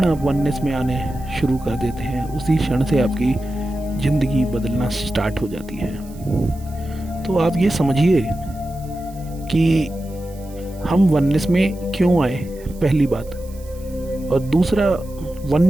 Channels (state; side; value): noise; right; hiss, 24 dB below the sound